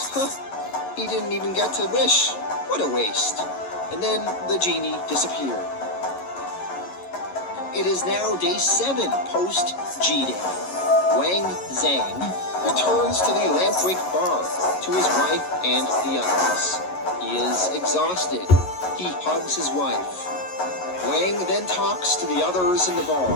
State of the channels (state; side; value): late; right; 11 ms